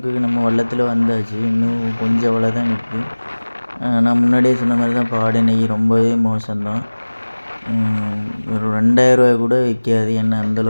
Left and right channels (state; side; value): inverted; both; correlation -1.00